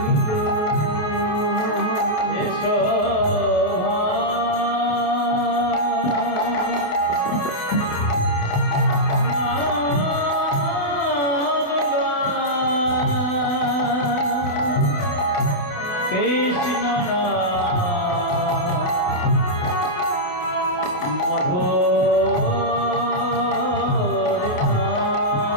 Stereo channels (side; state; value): right; late; 28 ms